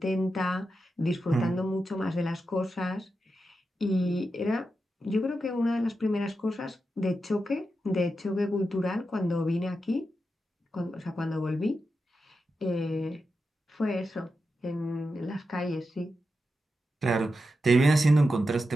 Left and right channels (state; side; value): normal; both; correlation 0.89